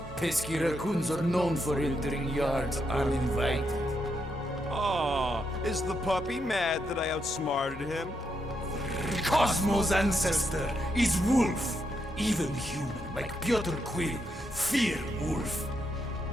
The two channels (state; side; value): normal; both; correlation 0.81